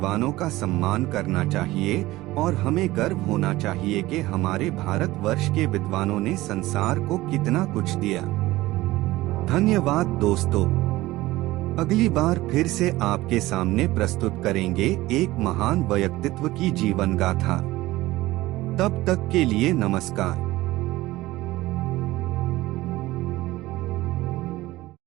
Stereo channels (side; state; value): left; quieter; 18.0 dB